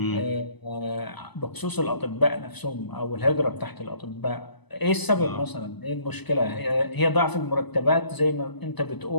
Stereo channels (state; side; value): late; right; 0.99 ms